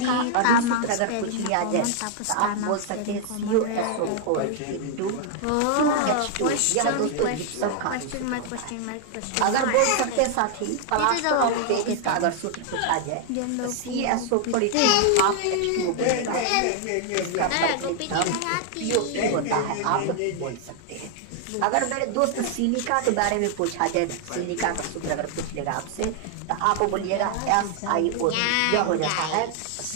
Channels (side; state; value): both; different; correlation 0.00